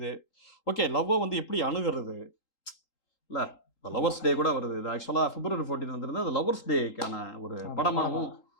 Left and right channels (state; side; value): late; right; 3.8 ms